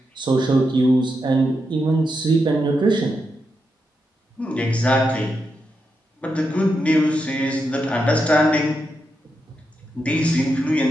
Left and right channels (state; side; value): normal; both; correlation 0.85